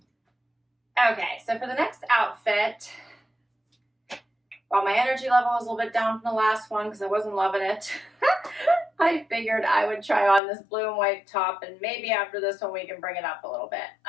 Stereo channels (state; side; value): drops out; right; at 10.4 s